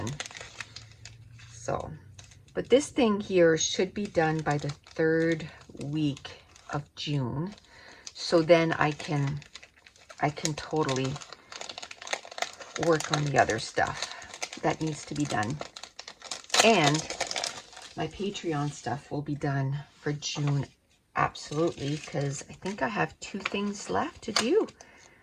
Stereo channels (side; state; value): both; identical; correlation 1.00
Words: So, but this thing here should be done by the 3rd week of June. So then I can totally work on the other stuff that needs to be done. And my Patreon stuff will be done for June, absolutely, because I think I have 2 things left to do.